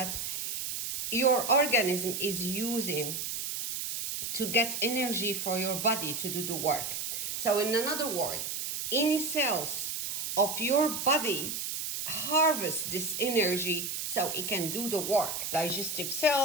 your organism is using to get energy for your body to do the work. So in another word, any cells of your body harvest this energy so it can do the work. Digestive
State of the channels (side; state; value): right; noise; hiss, 4 dB below the sound